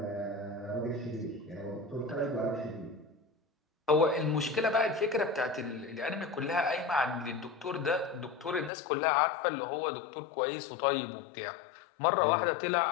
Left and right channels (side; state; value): right; drops out; at 8.7 s